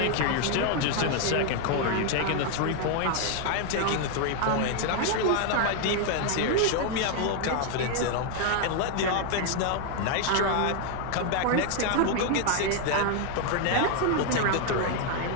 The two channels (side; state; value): both; different; correlation 0.00